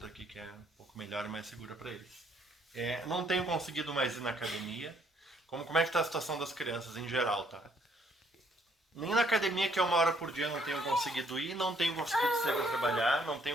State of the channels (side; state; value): both; normal; correlation 0.67